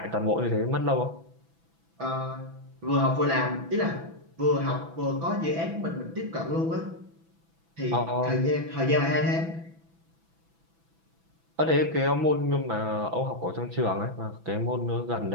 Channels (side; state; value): left; late; 6.0 ms